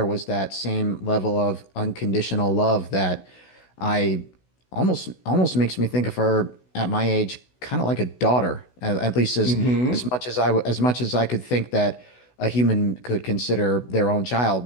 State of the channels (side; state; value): right; late; 16 ms